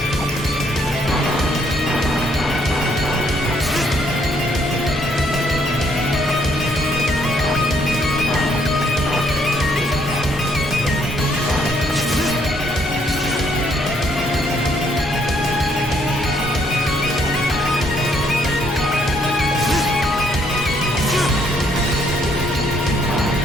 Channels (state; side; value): normal; both; correlation 0.69